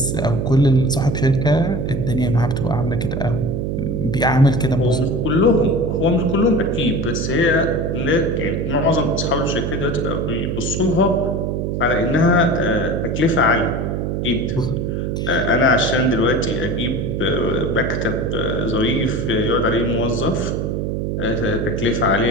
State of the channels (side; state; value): right; noise; hum, 1 dB below the sound